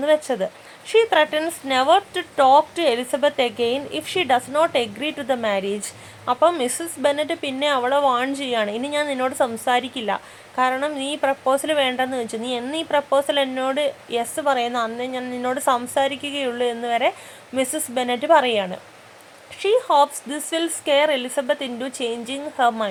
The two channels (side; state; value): both; identical; correlation 1.00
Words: വെച്ചത്. She threatens never to talk to Elizabeth again if she does not agree to the marriage. അപ്പം Mrs Bennet പിന്നെ അവളെ വാൺ ചെയ്യാണ്, ഇനി ഞാൻ നിന്നോട് സംസാരിക്കില്ല, കാരണം നീ പ്രപ്പോസൽ വേണ്ടെന്ന് വെച്ചു, നീ എന്ന് ഈ പ്രപ്പോസൽ എന്നോട് യെസ് പറയുന്നു അന്ന് ഞാൻ നിന്നോട് സംസാരിക്കുകയുള്ളൂ എന്ന് വരെ മിസ്സസ് ബെന്നറ്റ് പറയാണ്. She hopes this will scare Elizabeth into changing her